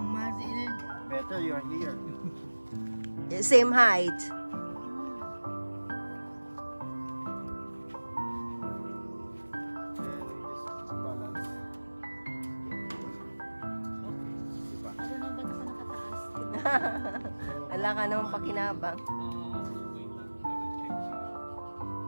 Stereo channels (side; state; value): both; inverted; correlation -1.00